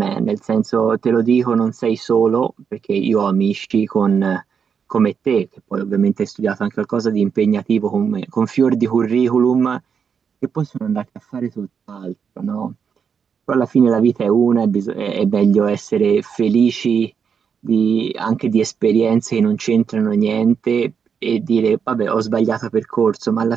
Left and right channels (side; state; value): left; quieter; 6.7 dB